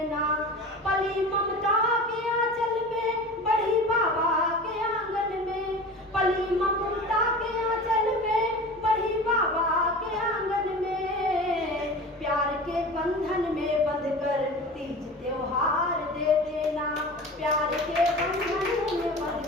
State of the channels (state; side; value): normal; both; correlation 0.35